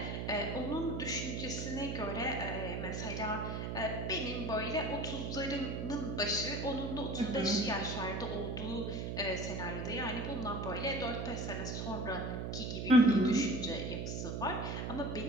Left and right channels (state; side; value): noise; right; hum, 3 dB below the sound